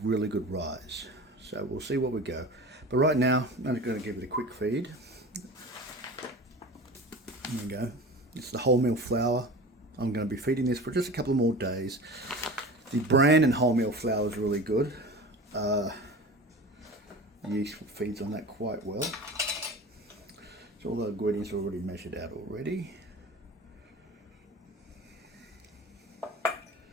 good rise. So we'll see what we go. But right now I'm just going to give it a quick feed. There we go. It's the wholemeal flour. I'm going to be feeding this for just a couple more days. The bran and wholemeal flour is really good. Yeast feeds on that quite well. So all the ingredients are already measured out already. A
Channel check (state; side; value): normal; both; correlation 0.35